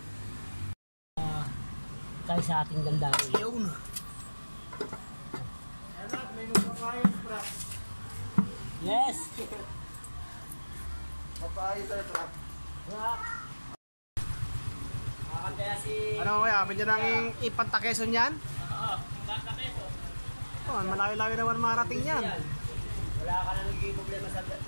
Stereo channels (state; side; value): inverted; both; correlation -1.00